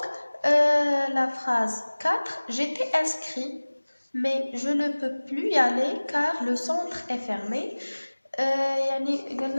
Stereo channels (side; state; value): both; inverted; correlation -1.00